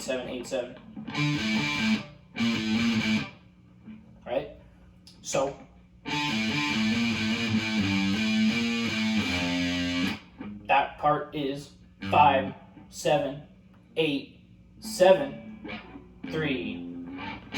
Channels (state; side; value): identical; both; correlation 1.00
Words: 7, 8, 7. Right? So that part is 5, 7, 8, 7, 3.